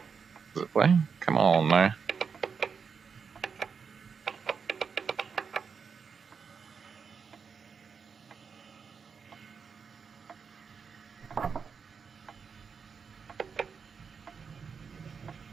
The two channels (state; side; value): quieter; left; 5.9 dB